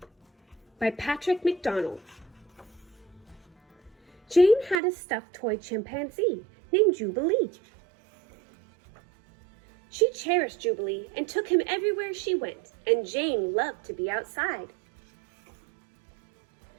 by Patrick McDonnell. Jane had a stuffed toy chimpanzee named Jubilee. She cherished Jubilee and took him everywhere she went, and Jane loved to be outside.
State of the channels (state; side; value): drops out; left; at 4.8 s